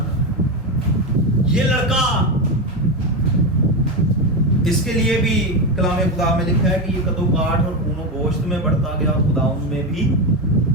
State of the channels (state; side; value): normal; both; correlation 0.14